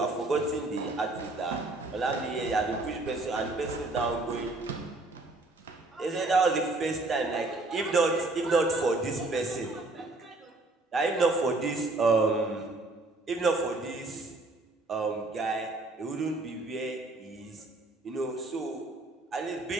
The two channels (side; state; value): left; quieter; 3.0 dB